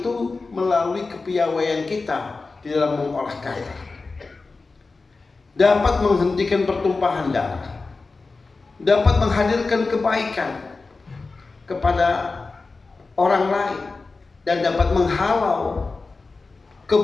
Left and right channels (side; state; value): right; quieter; 3.9 dB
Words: melalui kepiawaian kita di dalam mengolah kata, dapat menghentikan pertumpahan darah, dapat menghadirkan kebaikan kepada orang lain, dan dapat menghalau